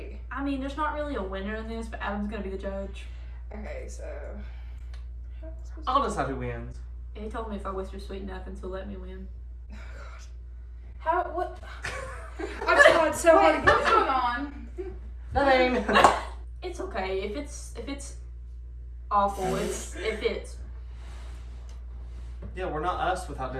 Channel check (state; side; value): identical; both; correlation 1.00